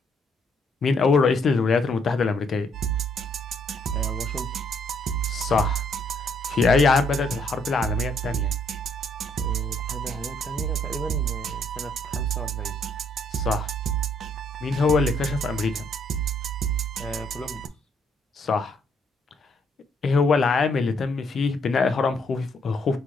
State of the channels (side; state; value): both; normal; correlation 0.69